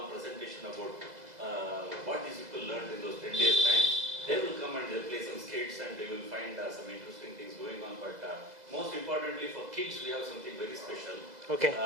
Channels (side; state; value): left; late; 2.0 ms